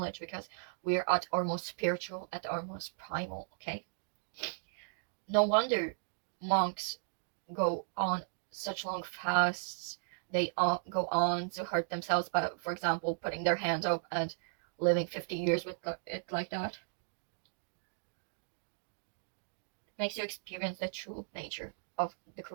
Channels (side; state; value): left; silent; digital silence